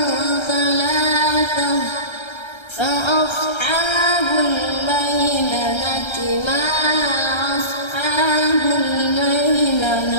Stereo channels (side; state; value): right; late; 1.3 ms